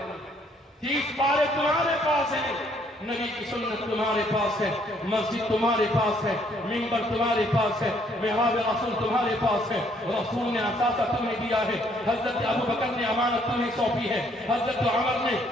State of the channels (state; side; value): normal; both; correlation 0.66